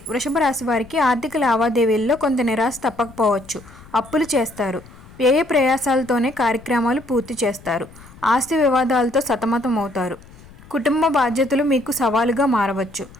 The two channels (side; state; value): left; noise; rumble, 21 dB below the sound